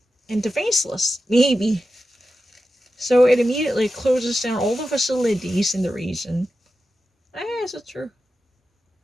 and defenseless, maybe. So it immediately closes down all the facilities in the region. Is it true?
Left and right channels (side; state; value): both; normal; correlation 0.91